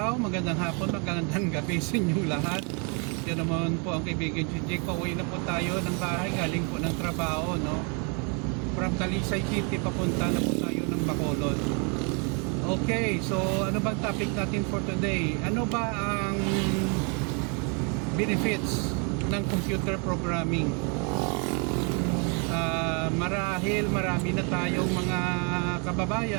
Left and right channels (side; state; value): left; quieter; 35.4 dB